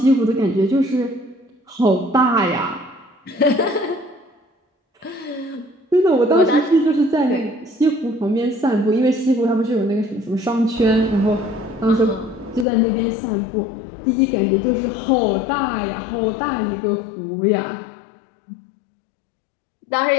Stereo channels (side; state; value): right; drops out; at 12.7 s